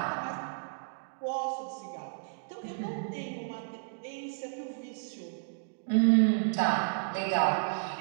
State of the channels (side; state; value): left; silent; digital silence